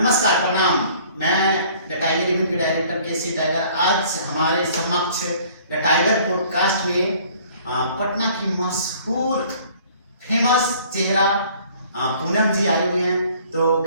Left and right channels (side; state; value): both; inverted; correlation -0.55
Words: प्रणाम। मैं द टाइगर इवेंट के डायरेक्टर केसी टाइगर। आज हमारे समक्ष द टाइगर पॉडकास्ट में पटना की मशहूर फेमस चेहरा पूनम जी आए हुए हैं। तो